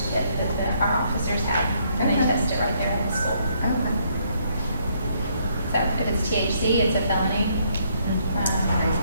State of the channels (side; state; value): both; inverted; correlation -0.70